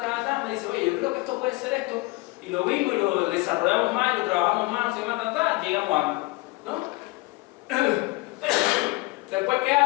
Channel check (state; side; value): quieter; right; 23.0 dB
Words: me dice, oye, yo creo que esto puede ser esto, y lo vimos y lo desarrollamos más, y lo trabajamos más, no sé qué más, llegamos a algo, ¿no? Después, ¿qué